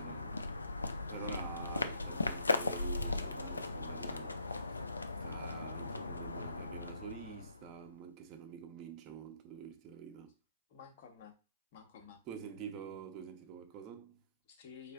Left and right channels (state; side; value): inverted; both; correlation -0.73